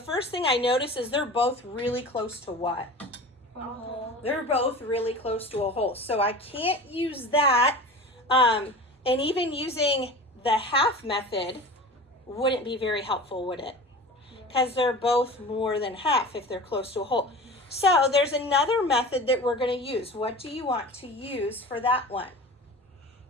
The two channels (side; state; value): both; normal; correlation 0.35